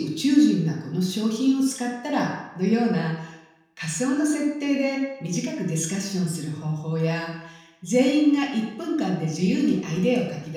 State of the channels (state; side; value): identical; both; correlation 1.00